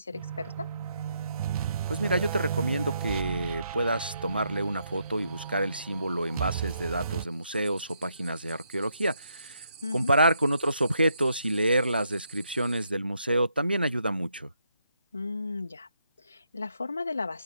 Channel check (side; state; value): both; inverted; correlation -0.77